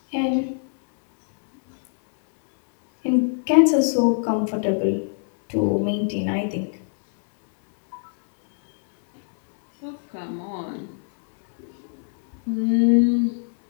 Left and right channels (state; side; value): silent; right; digital silence